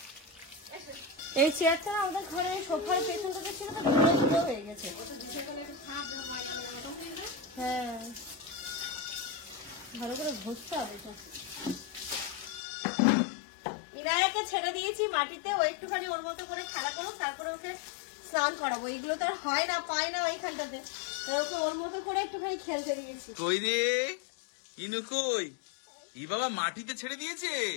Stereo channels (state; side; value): drops out; right; at 12.6 s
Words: এই চেয়ারটা আমাদের ঘরে সোফার পেছনটাতে ছিল, তো ধুলো ধুলো হয়ে গেছে। হ্যাঁ, ভালো করে ঘষতে হবে। ইনায়াকে ছেড়ে দিয়েছি মাটিতে, ও একটুখানি ওর মতো করে খেলা করুক, তারপরে ওকে স্নান করাবো। এগুলো তো আর হয় না, পায় না ওইখানটাতে, ওকে ওর মতো করে একটুখানি খেলতে দিয়েছি। কই রে ইনু কই? ই বাবা মাটিতে ছেড়ে দিয়েছে।